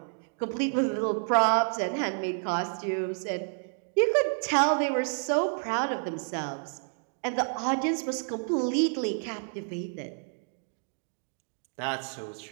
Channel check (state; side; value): silent; left; 58 dB below the other